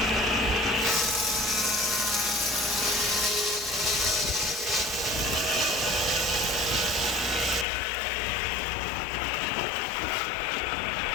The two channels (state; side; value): drops out; right; at 7.7 s